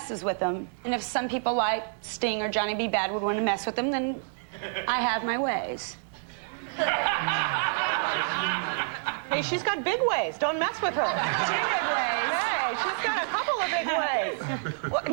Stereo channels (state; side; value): silent; left; digital silence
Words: with them. And if some people like Sting or Johnny B. Bad would want to mess with them, then I have my ways. Hey, she's got big ways. Don't mess with her. 2 big ways. Hey, she's got a couple of big ways. Well,